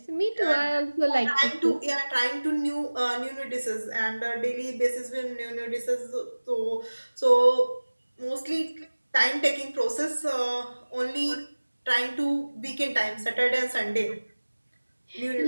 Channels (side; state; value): both; inverted; correlation -1.00